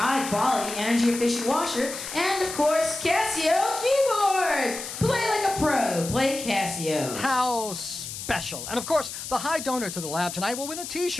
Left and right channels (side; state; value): left; noise; hiss, 8 dB below the sound